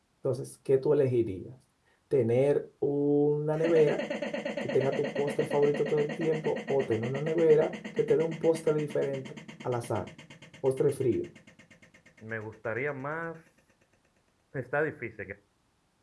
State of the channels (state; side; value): identical; both; correlation 1.00